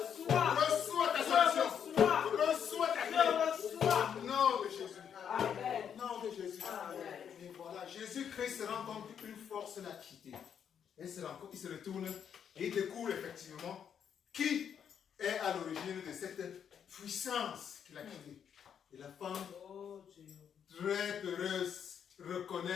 Reçois ta solution. Reçois ta clé. Nom de Jésus. Nom de Jésus. Et voilà, Jésus-Christ se rend compte qu'une force l'a quitté. Il se retourne et il découvre effectivement qui est à l'origine de cette puissance qu'il a quittée. Et la femme, très heureuse,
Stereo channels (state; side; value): quieter; right; 8.2 dB